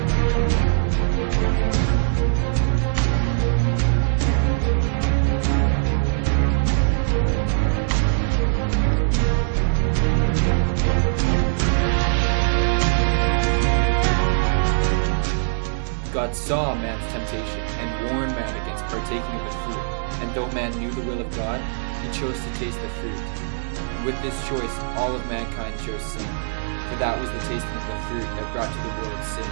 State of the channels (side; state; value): left; silent; digital silence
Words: God saw man's temptation and warned man against partaking of the fruit. And though man knew the will of God, he chose to taste the fruit. And with this choice, all of mankind chose sin. For that was the tasting of the fruit that brought to the world sin.